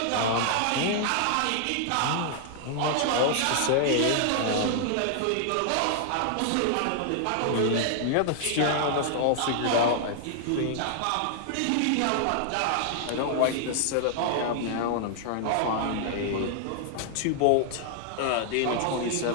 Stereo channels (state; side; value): different; both; correlation -0.01